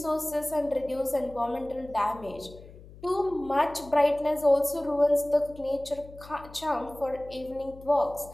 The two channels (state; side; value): noise; left; hum, 19 dB below the sound